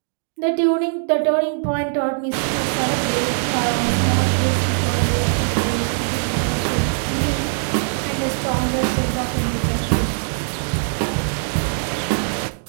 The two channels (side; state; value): left; silent; digital silence